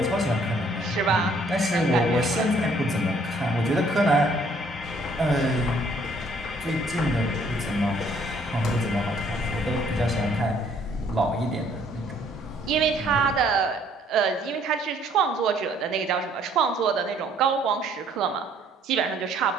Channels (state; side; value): normal; both; correlation 0.62